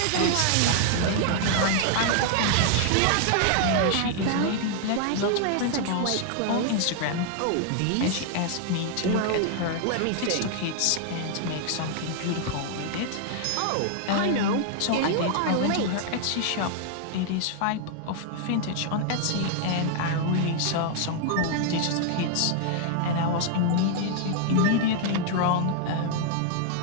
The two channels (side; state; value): both; different; correlation 0.00